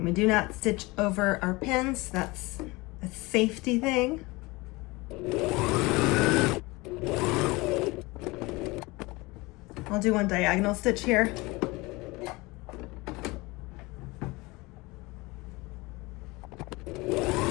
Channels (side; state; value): right; quieter; 23.2 dB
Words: we do not stitch over our pins. That's a safety thing. I'll do one diagonal stitch here.